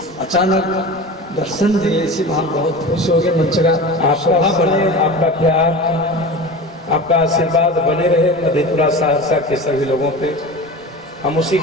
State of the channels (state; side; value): normal; both; correlation 0.32